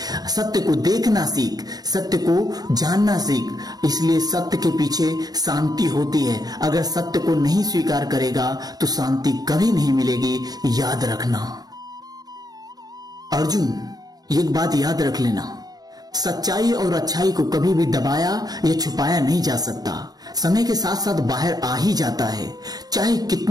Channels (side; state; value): left; late; 0.19 ms